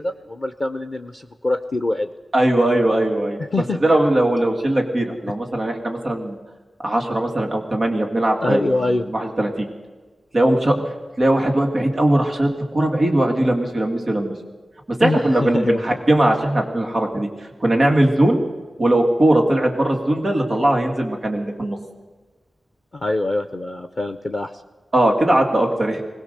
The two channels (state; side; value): normal; both; correlation 0.95